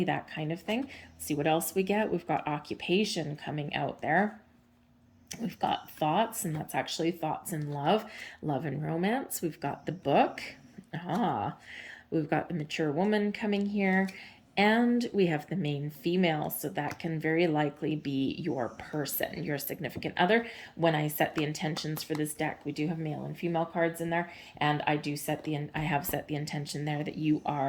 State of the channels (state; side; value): identical; both; correlation 1.00